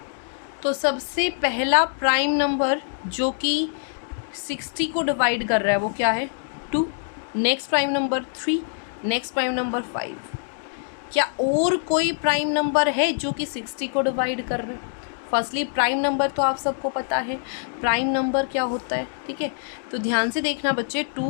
तो सबसे पहला प्राइम नंबर जो कि 60 को डिवाइड कर रहा है वो क्या है? 2। Next prime number 3, next prime number 5। क्या और कोई प्राइम नंबर है जो कि 60 को डिवाइड कर रहे हैं? फर्स्टली प्राइम नंबर तो आप सबको पता है प्राइम नंबर क्या होता है, ठीक है। तो ध्यान से देखना बच्चे,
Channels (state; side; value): silent; right; digital silence